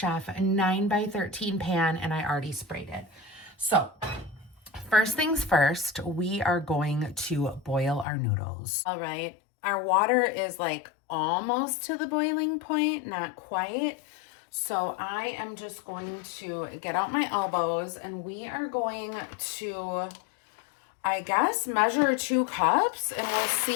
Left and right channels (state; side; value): drops out; right; at 8.1 s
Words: 9x13 pan, and I already sprayed it. So first things first, we are going to boil our noodles. All right. Our water is like almost to the boiling point, not quite. So I am just going to get out my elbows, and we are going to I guess measure 2 cups and we'll